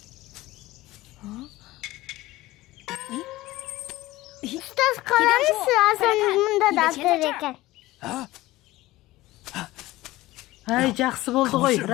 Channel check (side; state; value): right; quieter; 17.9 dB